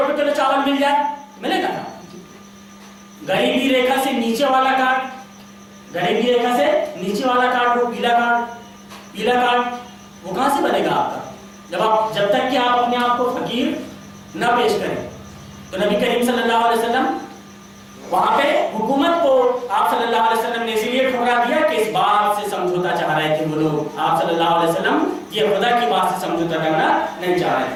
کلو چاول مل جائے، ملے گا؟ غریبی ریکھا سے نیچے والا کارڈ، وہ پیلا کارڈ وہ کہاں سے بنے گا آپ کا؟ جب تک کہ آپ اپنے آپ کو فقیر نہ پیش کریں۔ تو نبی کریم صلی اللہ علیہ وسلم وہاں پہ حکومت کو آپ صلی اللہ علیہ وسلم نے اسی لیے ٹھکرا دیا کہ اس بات سے سمجھوتا چاہ رہے تھے وہ لوگ، آپ صلی اللہ علیہ وسلم یہ خدا کی بات سے سمجھوتا کرنا نہیں چاہ رہے تھے۔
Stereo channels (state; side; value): identical; both; correlation 1.00